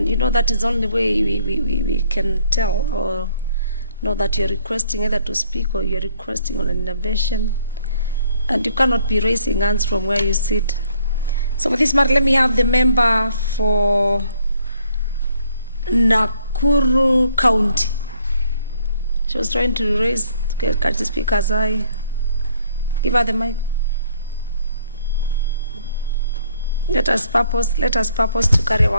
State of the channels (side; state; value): both; inverted; correlation -0.65